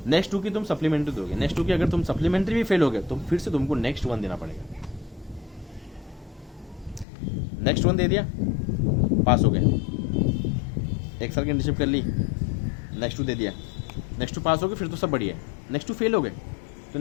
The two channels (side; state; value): right; drops out; at 7.1 s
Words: नेक्स्ट 2 की तुम सप्लीमेंट्री दोगे, नेक्स्ट 2 की अगर तुम सप्लीमेंट्री भी फेल हो गए तो फिर से तुमको नेक्स्ट 1 देना पड़ेगा। नेक्स्ट 1 दे दिया, पास हो गए, 1 साल की इंटर्नशिप कर ली, नेक्स्ट 2 दे दिया, नेक्स्ट 2 पास हो गए, फिर तो सब बढ़िया है। नेक्स्ट 2 फेल हो गए तो